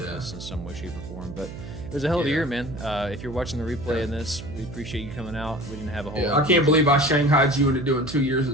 this in some way, shape, or form. But it was a hell of a year, man. If you're watching the replay in this, we appreciate you coming out. We didn't have a whole. I can't believe I shanghaied you into doing 2 years of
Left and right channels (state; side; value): noise; right; hum, 11 dB below the sound